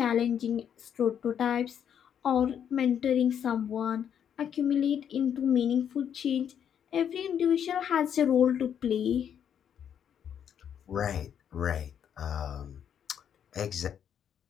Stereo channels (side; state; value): right; quieter; 8.7 dB